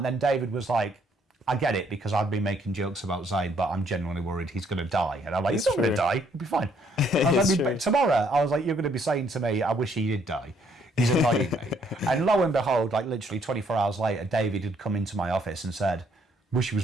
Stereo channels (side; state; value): both; normal; correlation 0.68